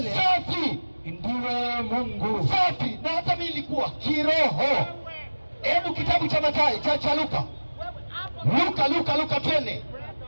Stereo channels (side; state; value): both; inverted; correlation -1.00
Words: safi, ndiwe Mungu. safi. Na hata mimi nilikuwa kiroho. Hebu kitabu cha Mathayo cha Luka twende